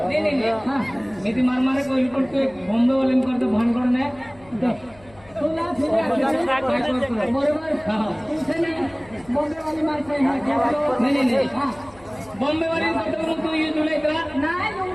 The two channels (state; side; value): noise; left; hum, 26 dB below the sound